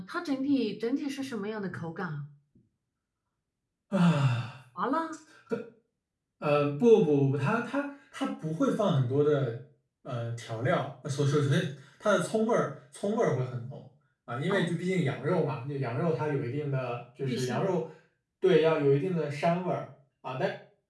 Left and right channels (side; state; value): both; identical; correlation 1.00